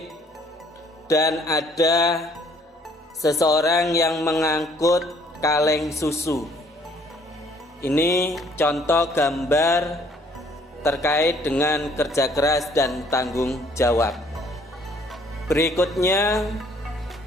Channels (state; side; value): normal; both; correlation 0.61